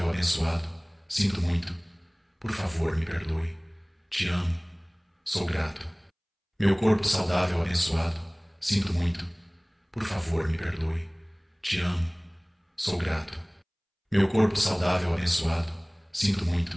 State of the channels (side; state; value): both; identical; correlation 1.00